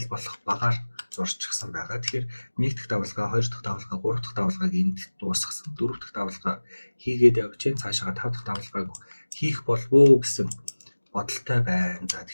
болох багаар зурчихсан байгаа. Тэгэхээр 1 дахь давлгаа, 2 дахь давлгаа, 3 дахь давлгааг энд дуусгасан. 4 дахь давлгаа хийгээд явж чинь цаашаа 5 дахь давлгааг хийх болов уу гэсэн бодолтой байна. За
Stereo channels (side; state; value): both; inverted; correlation -1.00